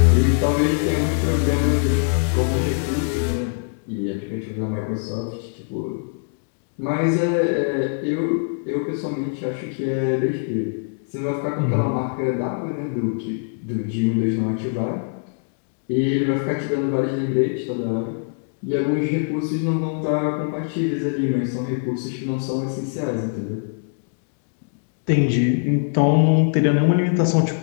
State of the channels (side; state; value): right; silent; digital silence